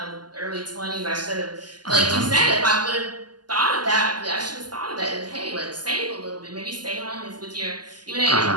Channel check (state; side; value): late; left; 0.70 ms